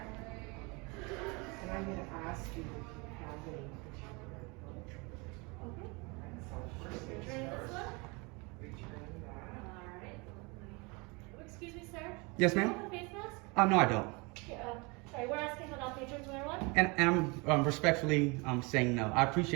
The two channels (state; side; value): quieter; left; 28.2 dB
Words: And I'm gonna ask you if you have any particular book. Okay. So first things Return this first, one? return that. Alright. Oh, excuse me, sir? Yes, Do you ma'am? have a face mask? No, I don't. Sorry, we're asking that all patrons wear one. And I'm respectfully saying no. I